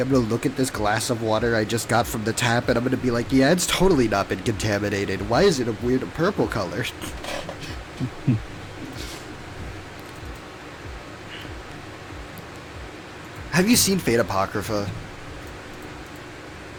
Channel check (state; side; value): identical; both; correlation 1.00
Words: gonna look at this glass of water I just got from the tap, and I'm gonna be like, yeah, it's totally not been contaminated. Why is it a weird purple color? Have you seen Fate Apocrypha?